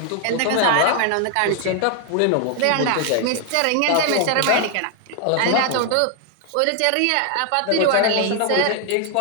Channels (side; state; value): both; different; correlation 0.00